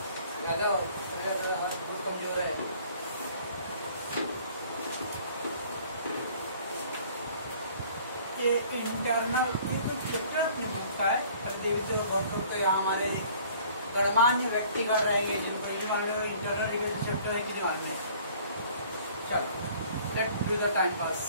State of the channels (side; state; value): both; inverted; correlation -0.54